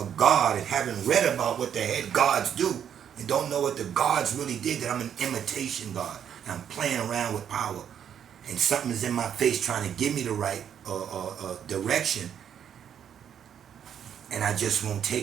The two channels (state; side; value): quieter; left; 8.8 dB